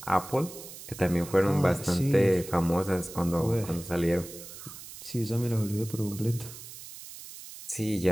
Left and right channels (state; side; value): noise; right; hiss, 14 dB below the sound